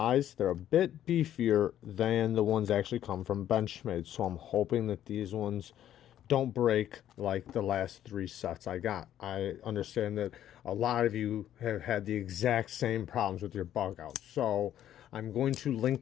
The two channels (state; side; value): quieter; right; 11.4 dB